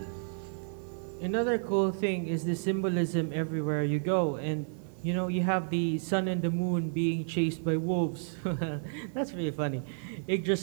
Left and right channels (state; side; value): silent; left; 57 dB below the other